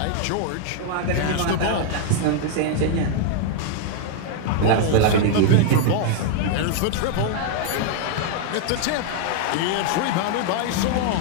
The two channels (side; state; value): both; different; correlation 0.00